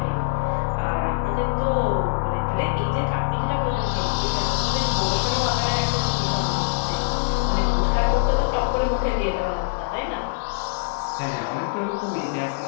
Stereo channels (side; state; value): right; silent; digital silence